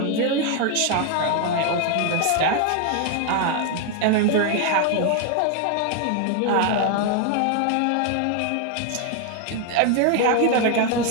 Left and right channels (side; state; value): both; different; correlation 0.01